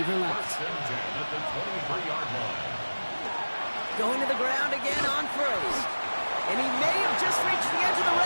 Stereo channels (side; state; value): both; inverted; correlation -1.00